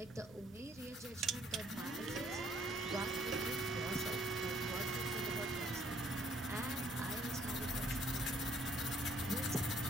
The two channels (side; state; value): both; normal; correlation 0.65